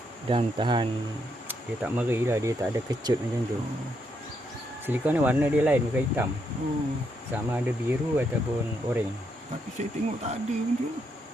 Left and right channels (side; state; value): both; normal; correlation 0.78